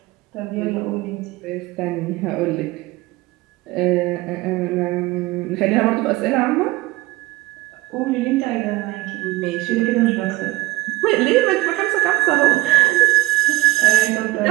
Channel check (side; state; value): left; quieter; 18.9 dB